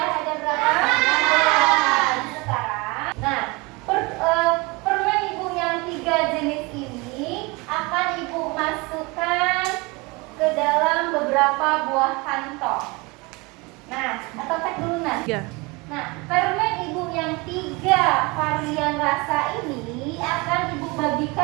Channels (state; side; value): quieter; left; 25.9 dB